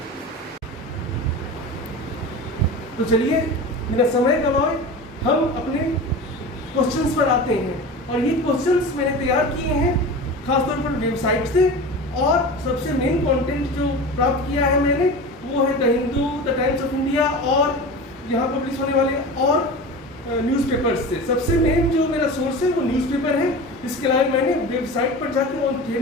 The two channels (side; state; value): both; normal; correlation 0.31